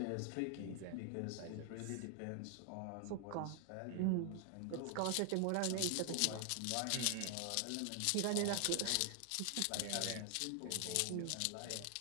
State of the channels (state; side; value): different; both; correlation 0.00